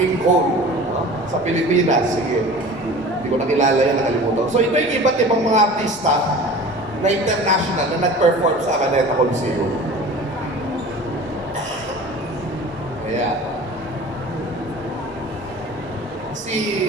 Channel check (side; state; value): both; normal; correlation 0.40